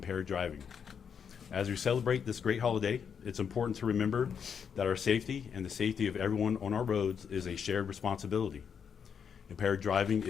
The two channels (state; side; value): quieter; right; 7.1 dB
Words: driving. As we celebrate this great holiday, it's important to remember that our safety and the safety of everyone on our roads is a shared responsibility. Impaired driving